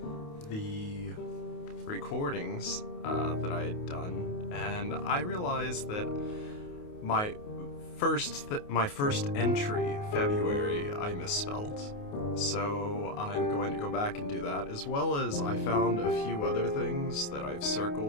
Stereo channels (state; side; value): late; right; 28 ms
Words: the recordings that I had done, and I realized that my first entry, February, I misspelled. So I'm going to go back and do that, as well as I found a few other things that I've